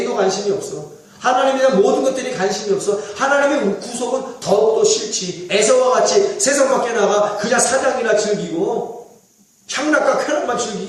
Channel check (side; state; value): both; identical; correlation 1.00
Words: 관심이 없어? 하나님에 대한 모든 것들이 관심이 없어. 하나님의 구속은 더욱더 싫지. 에서와 같이 세상 밖에 나가 그냥 사냥이나 즐기고 향락과 쾌락만